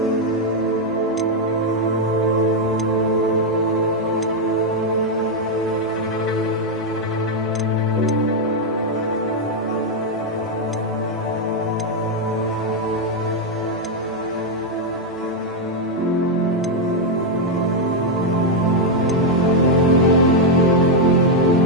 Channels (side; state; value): both; normal; correlation 0.01